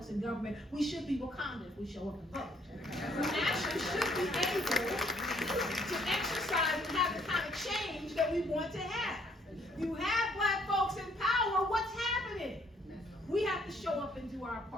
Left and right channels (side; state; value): both; normal; correlation 0.66